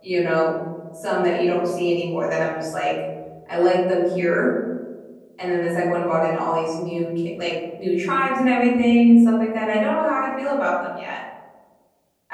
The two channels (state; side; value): identical; both; correlation 1.00